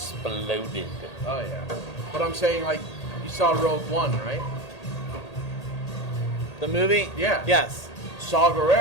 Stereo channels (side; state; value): right; late; 1.8 ms